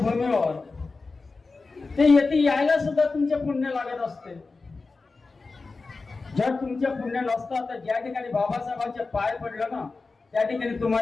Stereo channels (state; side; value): quieter; right; 3.9 dB